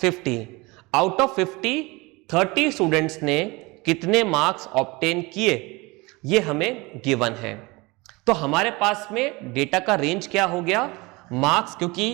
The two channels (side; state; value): left; quieter; 24.3 dB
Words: 50, out of 50 30 students ने कितने मार्क्स ऑब्टेन किए ये हमें गिवन है। तो हमारे पास में डेटा का रेंज क्या हो गया, मार्क्स, क्योंकि